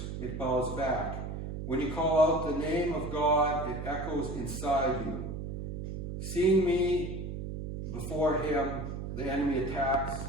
it bows back. When you call out the name of God, it echoes inside you. Seeing me before him, the enemy attacks,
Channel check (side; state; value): right; noise; hum, 6 dB below the sound